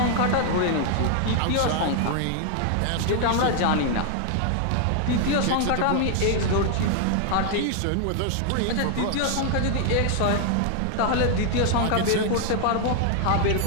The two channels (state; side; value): different; both; correlation 0.00